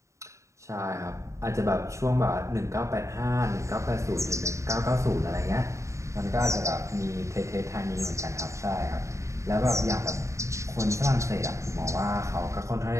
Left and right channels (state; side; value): late; left; 0.14 ms